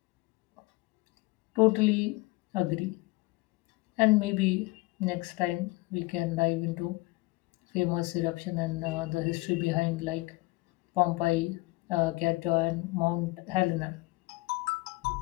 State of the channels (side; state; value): right; quieter; 22.4 dB